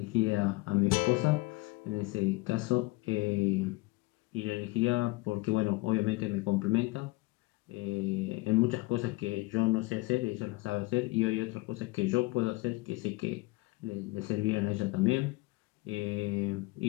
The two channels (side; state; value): right; quieter; 22.2 dB